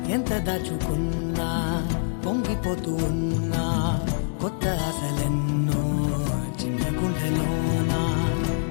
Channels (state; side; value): silent; right; digital silence